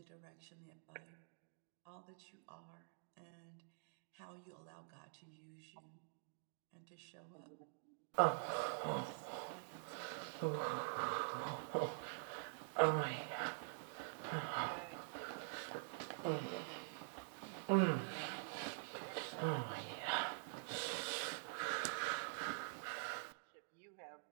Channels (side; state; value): left; silent; digital silence